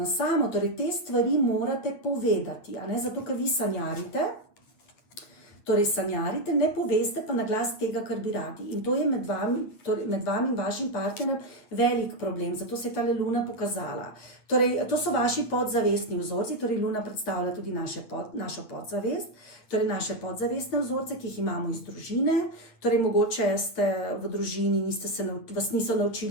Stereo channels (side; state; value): right; late; 9.3 ms